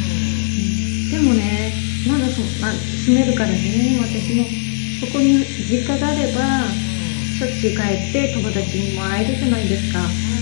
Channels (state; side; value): silent; right; digital silence